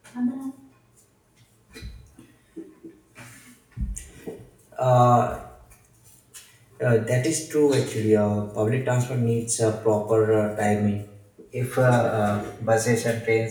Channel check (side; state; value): both; identical; correlation 1.00